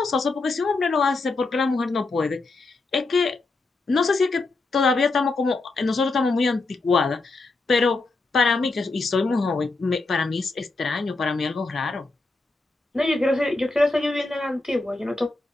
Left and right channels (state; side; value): quieter; right; 3.5 dB